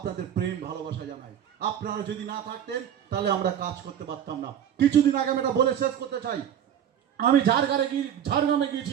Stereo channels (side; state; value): left; quieter; 9.5 dB